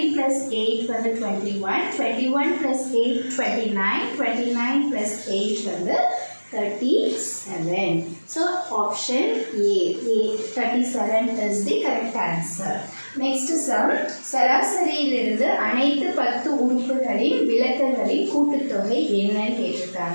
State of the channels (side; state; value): both; inverted; correlation -1.00